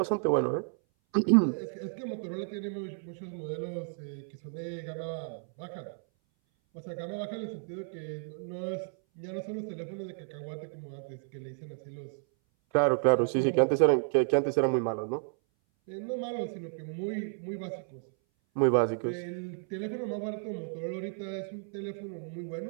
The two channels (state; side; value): silent; left; 56 dB below the other